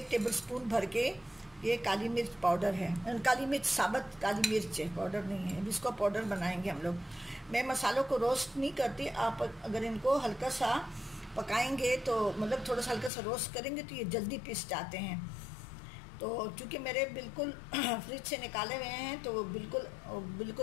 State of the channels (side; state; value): right; drops out; at 13.1 s